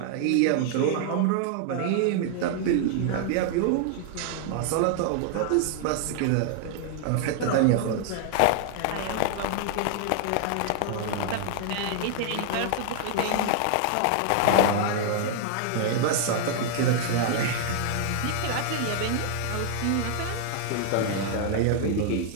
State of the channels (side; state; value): both; different; correlation 0.00